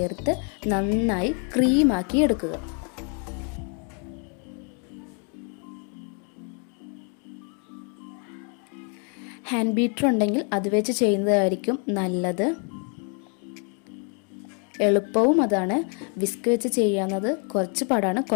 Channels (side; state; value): right; quieter; 39.4 dB